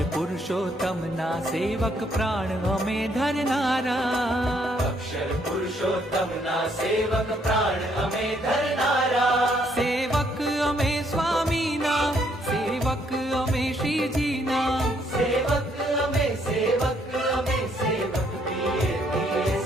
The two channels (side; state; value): both; normal; correlation 0.69